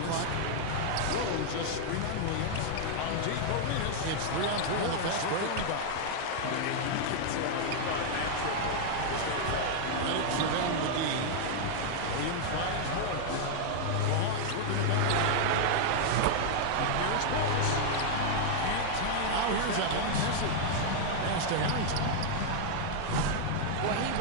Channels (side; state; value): both; different; correlation -0.01